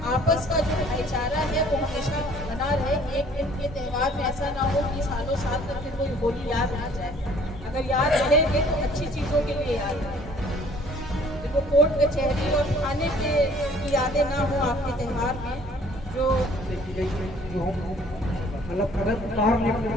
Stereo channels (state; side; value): normal; both; correlation 0.56